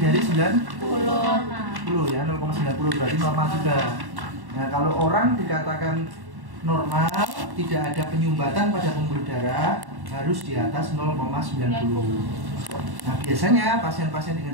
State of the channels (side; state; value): left; late; 1.1 ms